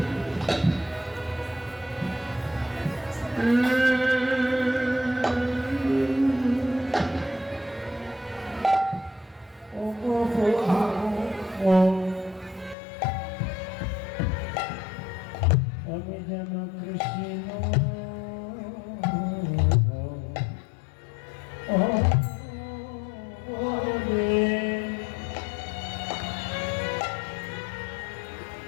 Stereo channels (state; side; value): drops out; right; at 12.8 s